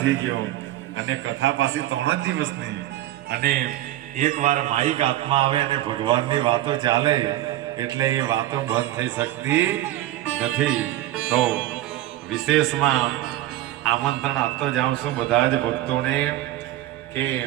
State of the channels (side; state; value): left; quieter; 14.5 dB